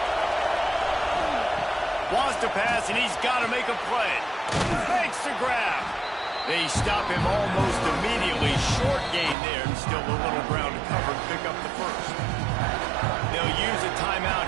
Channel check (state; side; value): drops out; left; at 9.3 s